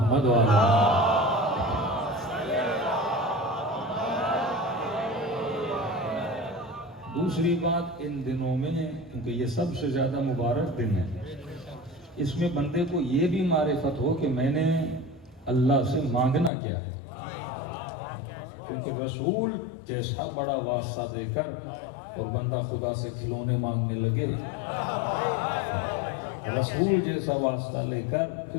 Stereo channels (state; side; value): drops out; right; at 16.5 s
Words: و آل محمد۔ دوسری بات، ان دنوں میں کیونکہ یہ سب سے زیادہ مبارک دن ہے، اس میں بندے کو یہ بھی معرفت ہو کہ میں نے اللہ سے مانگنا کیا ہے، کیونکہ رسول جیسا بڑا واسطہ دے کر اور بندہ خدا سے کھلونے مانگنے لگے، رسول جیسا واسطہ لے کر